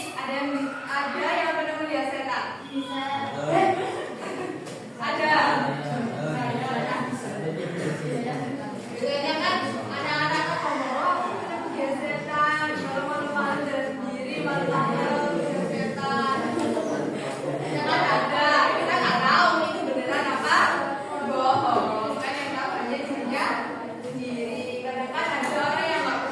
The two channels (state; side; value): identical; both; correlation 1.00